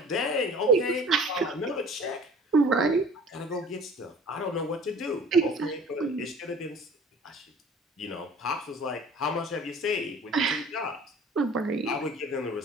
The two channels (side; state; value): both; normal; correlation 0.47